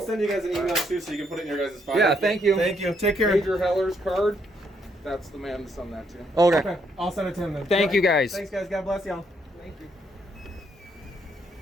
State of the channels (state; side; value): normal; both; correlation 0.73